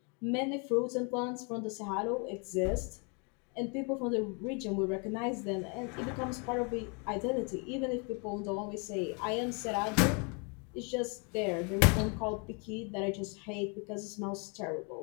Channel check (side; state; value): right; quieter; 34.9 dB